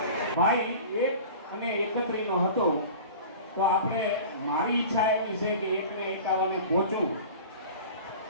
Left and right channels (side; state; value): both; inverted; correlation -0.39